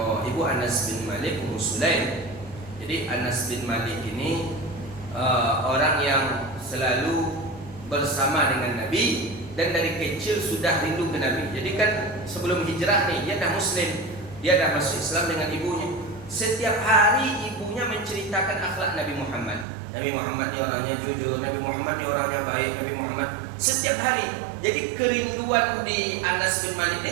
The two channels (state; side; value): drops out; left; at 19.7 s